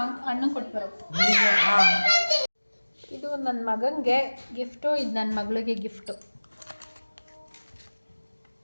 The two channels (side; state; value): both; inverted; correlation -1.00